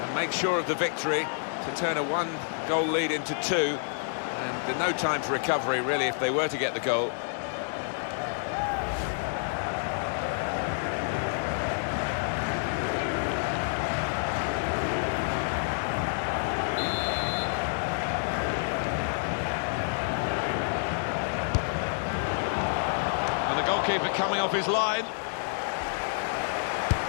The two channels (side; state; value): right; silent; digital silence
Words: make sure of the victory, to turn a one-goal lead into two. And no time for recovery, really, if they were to get the goal. And the goalkeeper coming off his line.